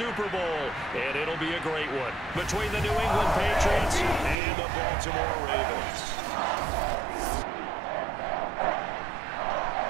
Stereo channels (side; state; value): left; drops out; at 4.4 s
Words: Bowl. And it'll be a great one between the New England Patriots and the Baltimore Ravens.